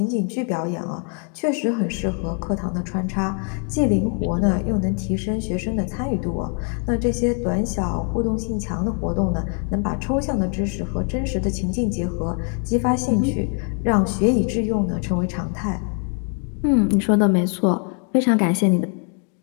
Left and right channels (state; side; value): quieter; right; 39.2 dB